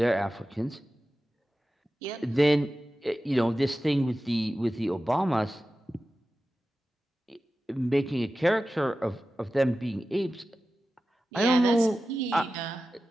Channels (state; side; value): normal; both; correlation 0.94